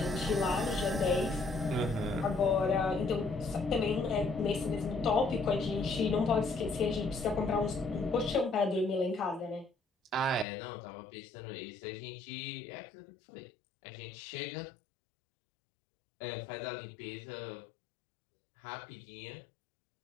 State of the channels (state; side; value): drops out; right; at 10.5 s